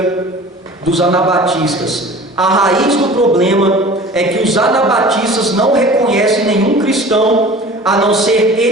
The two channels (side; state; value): both; normal; correlation 0.42